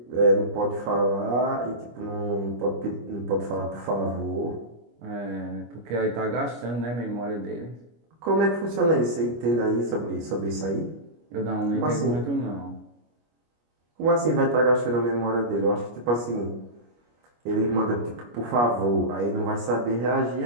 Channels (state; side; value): late; left; 25 ms